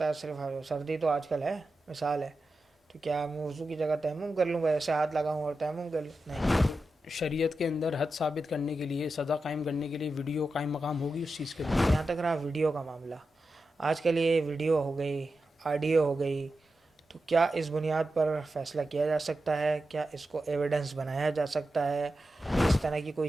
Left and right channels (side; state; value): both; normal; correlation 0.90